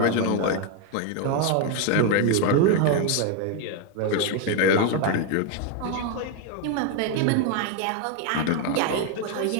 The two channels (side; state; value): both; different; correlation 0.01